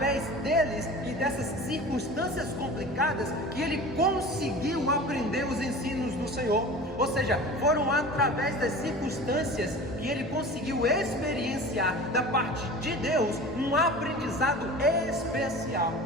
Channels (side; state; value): both; normal; correlation 0.37